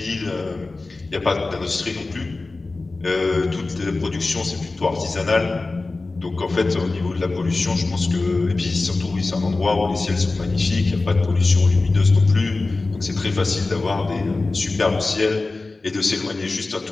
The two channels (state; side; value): quieter; right; 3.4 dB